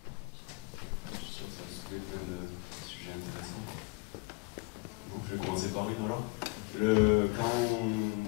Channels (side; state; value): right; quieter; 28.2 dB